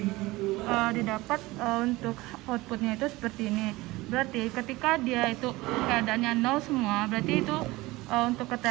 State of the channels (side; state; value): left; quieter; 20.3 dB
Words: didapat untuk outputnya itu seperti ini. Berarti ketika dia itu keadaannya 0 semua, berarti itu untuk